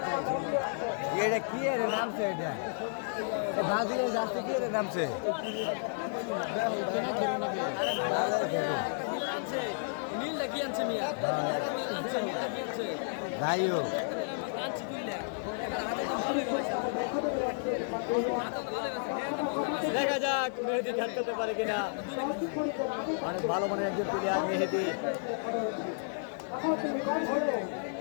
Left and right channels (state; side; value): silent; right; digital silence